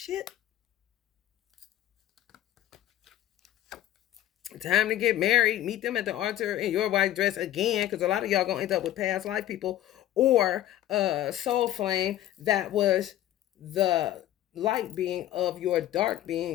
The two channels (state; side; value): quieter; right; 13.0 dB